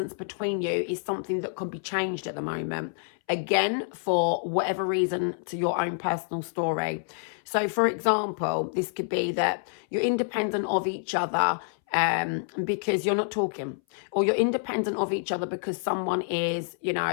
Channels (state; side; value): silent; right; 60 dB below the other